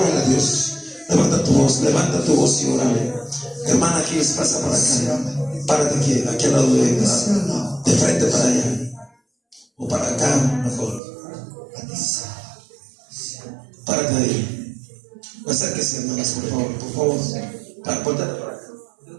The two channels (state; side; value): drops out; left; at 11.0 s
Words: a Dios. Levanta tu voz y órale. Hermana, aquí pasa para acá. Párate aquí al lado de frente para allá. O para acá, mejor. Párate ahí. Acérquese, hermanas, por favor. Por favor. Ponte para acá.